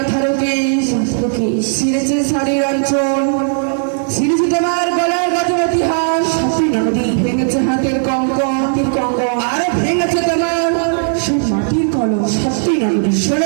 কেশ, সিরেছে শাড়ির অঞ্চল, সিরেছে তোমার গলার গজবতী হাস, নদী ভেঙেছে হাতের কঙ্কন, আর ভেঙেছে তোমার সে মাটির কলম। সত্যি নদী।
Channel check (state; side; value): silent; left; digital silence